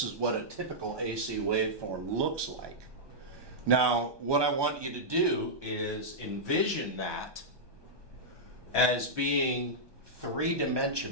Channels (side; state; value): left; late; 1.2 ms